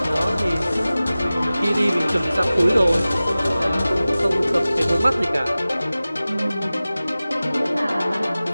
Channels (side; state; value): both; inverted; correlation -0.97